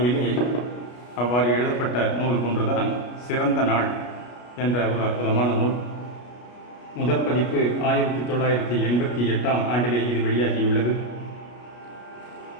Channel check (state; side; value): late; right; 33 ms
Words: அவ்வாறு எழுதப்பட்ட நூல் ஒன்றுதான் சிறந்த நாள் என்ற ஒரு அற்புதமான நூல். முதற் பதிப்பு 1988 ஆண்டிலே இது வெளியாகியுள்ளது.